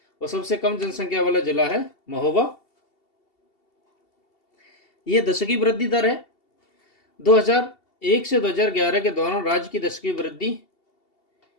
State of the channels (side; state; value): right; late; 2.7 ms